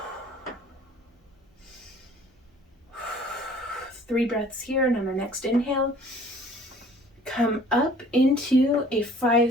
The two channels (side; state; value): both; normal; correlation 0.53